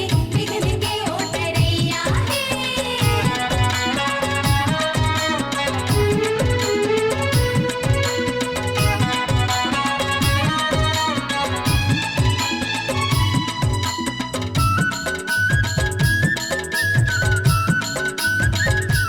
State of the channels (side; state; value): both; identical; correlation 1.00